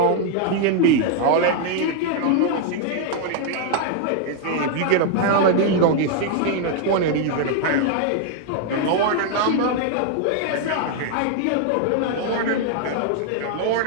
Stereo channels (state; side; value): different; both; correlation 0.00